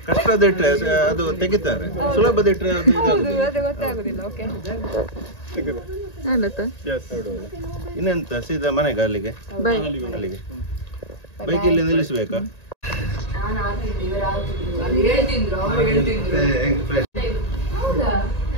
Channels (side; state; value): right; late; 1.9 ms